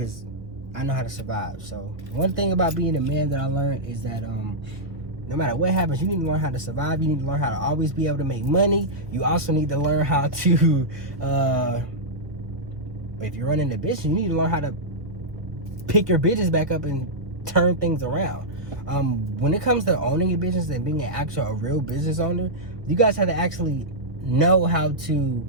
I know how to survive. So one thing about being a man that I learned is that no matter what happens, you need to learn how to survive. You need to learn how to always be able to make money. You also need to learn how to, if you're running a business, you need to learn how to pick your business back up and turn things around. When it comes to owning a business and being a real business owner, you guys have to actually know how to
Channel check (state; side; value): late; left; 1.0 ms